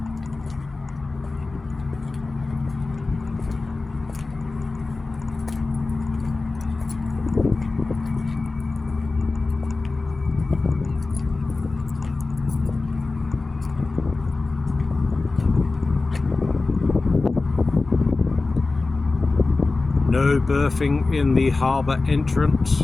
No berthing in the harbour entrance.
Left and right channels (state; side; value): quieter; right; 3.5 dB